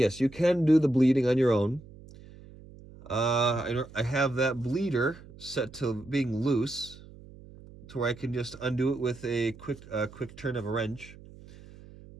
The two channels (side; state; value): right; noise; hum, 20 dB below the sound